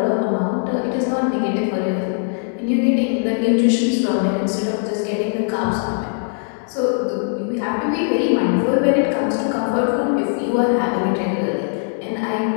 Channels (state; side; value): silent; right; 59 dB below the other